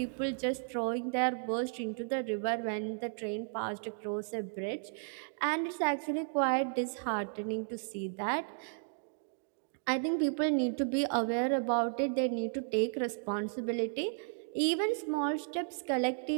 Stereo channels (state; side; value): silent; left; digital silence